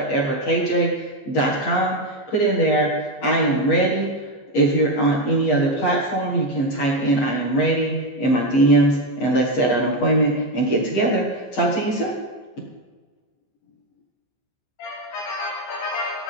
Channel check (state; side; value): late; right; 15 ms